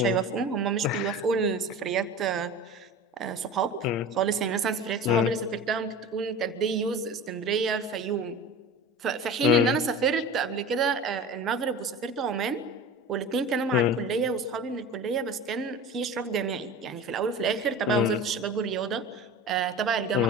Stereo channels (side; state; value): both; normal; correlation 0.34